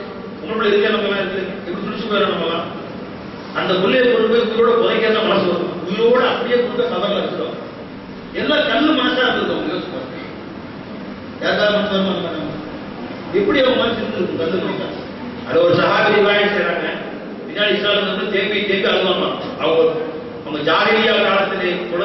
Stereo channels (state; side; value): identical; both; correlation 1.00